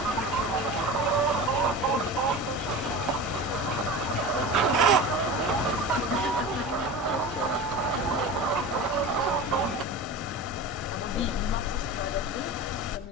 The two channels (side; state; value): both; normal; correlation 0.31